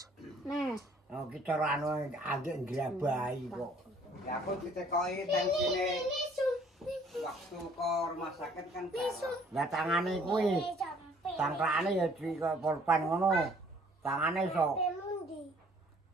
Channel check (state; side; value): normal; both; correlation 0.58